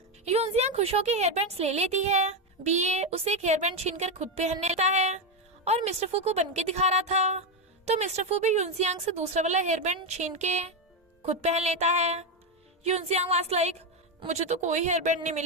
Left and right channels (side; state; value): both; normal; correlation 0.09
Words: यूनजियांग खुश होकर हेयर बैंड्स ले लेती है। बीए उसे एक हेयर बैंड छीनकर खुद पहन लेता है, और मिस्टर फू को बन के दिखा रहा था, तो मिस्टर फू भी यूनजियांग से दूसरा वाला हेयर बैंड छीन के खुद पहन लेता है। यूनजियांग वाज लाइक मुझे तो कोई हेयर बैंड नहीं